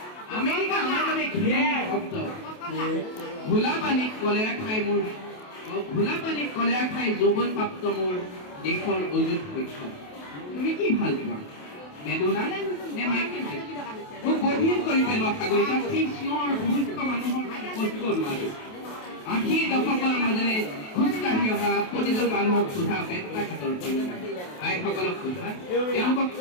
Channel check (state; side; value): late; right; 28 ms